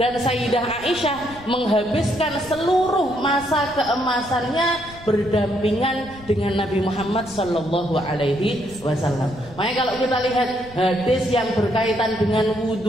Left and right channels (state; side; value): noise; left; rumble, 19 dB below the sound